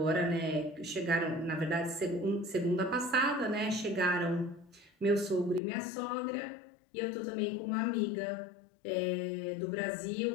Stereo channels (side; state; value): right; drops out; at 5.6 s